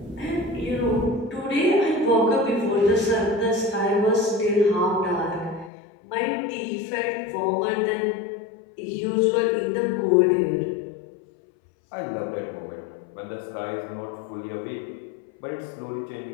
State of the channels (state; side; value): drops out; right; at 5.7 s